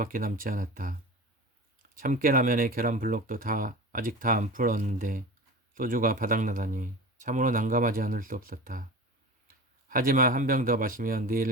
남지 않았다. 참깨라면에 계란 블록도 아직 다 안 풀었는데 소주가 바닥나다니 참으로 난감하지 않을 수 없었다. 하지만 한 병 더 마시면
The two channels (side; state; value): both; normal; correlation 0.33